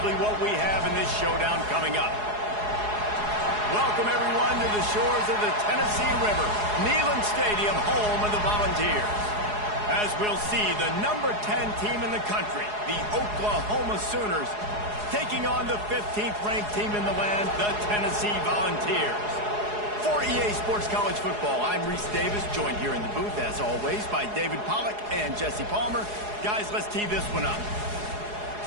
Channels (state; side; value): late; left; 4.8 ms